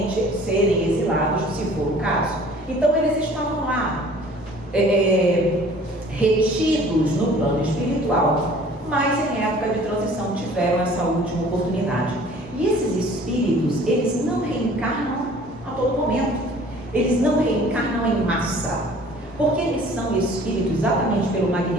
serem exilados, se for o caso. Então, eles estavam lá, retidos no plano espiritual, mas em época de transição tiveram essa última oportunidade. E esses espíritos, eles não reencarnam a todo momento. Eles não reencarnam em massa. Porque eles são espíritos, exatamente pelo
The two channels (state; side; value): normal; both; correlation 0.50